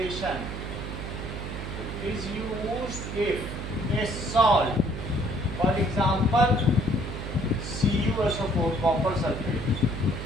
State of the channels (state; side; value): noise; right; hum, 6 dB below the sound